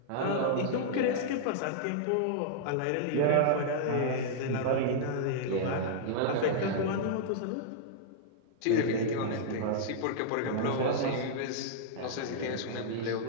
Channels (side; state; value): both; different; correlation -0.02